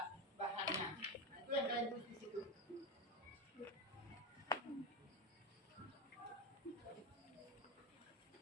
bahannya. Nah, itu yang kalian tulis di situ.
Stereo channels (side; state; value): both; normal; correlation 0.15